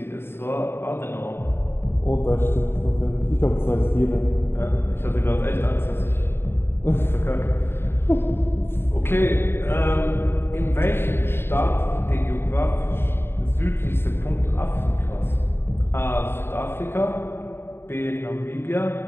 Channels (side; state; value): right; late; 0.11 ms